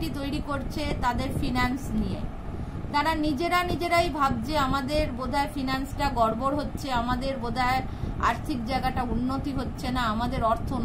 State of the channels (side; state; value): both; identical; correlation 1.00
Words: তৈরি করছে তাদের ফিনান্স নিয়ে, তারা নিজেরাই ভাবছে আমাদের বোধহয় ফিনান্সটা গড়বড় হচ্ছে, আমাদের বোধহয় আর্থিক জায়গাটা উন্নতি হচ্ছে না, আমাদের অর্থ